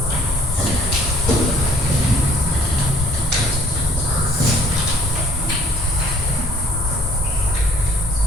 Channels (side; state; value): both; normal; correlation 0.58